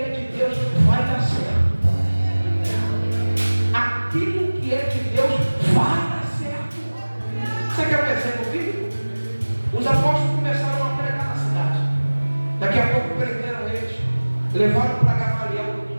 é de Deus vai dar certo. Aquilo que é de Deus vai dar certo. Você quer um exemplo bíblico? Os apóstolos começaram a pregar na cidade. Daqui a pouco prenderam eles, levaram para Gamaliel,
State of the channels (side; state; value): both; inverted; correlation -1.00